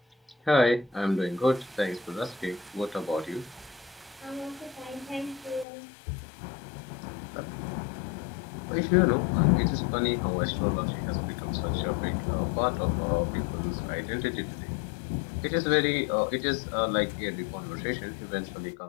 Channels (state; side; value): drops out; right; at 5.7 s